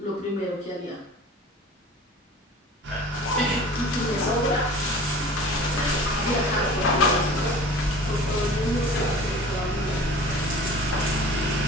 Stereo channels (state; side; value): normal; both; correlation 0.42